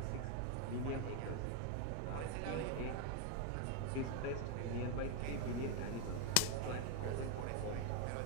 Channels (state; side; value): different; both; correlation 0.01